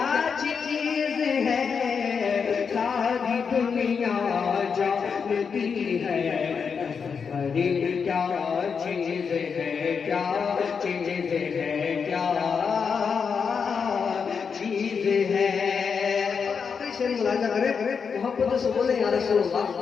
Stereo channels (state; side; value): quieter; right; 6.0 dB